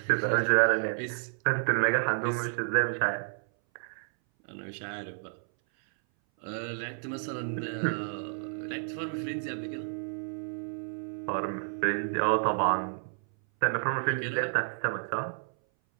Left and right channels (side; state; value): left; silent; 57 dB below the other